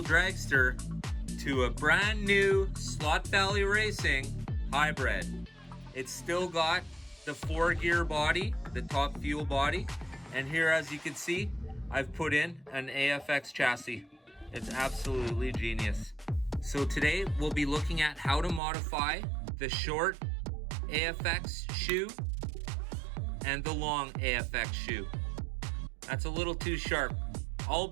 Dragster to a brand new Slot Valley Racing hybrid. It's still got the 4-gear body, the Top Fuel body, and here, as you can see, I've put in an AFX chassis. It's absolutely genius. So today we'll be looking at how to modify the short AFX shoe and the long AFX shoe. That's a little too sharp. I'll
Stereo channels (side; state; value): left; drops out; at 18.6 s